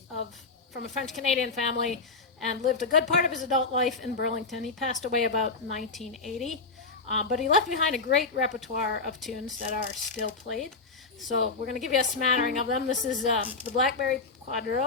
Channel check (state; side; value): quieter; right; 4.1 dB